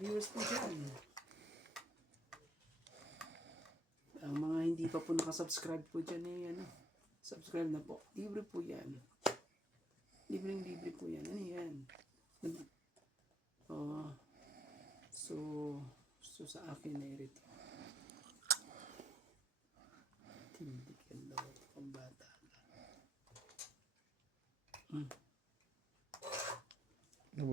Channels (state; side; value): normal; both; correlation 0.70